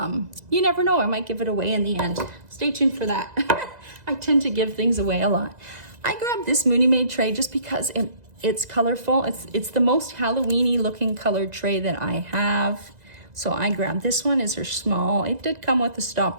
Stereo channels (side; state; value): left; late; 2.0 ms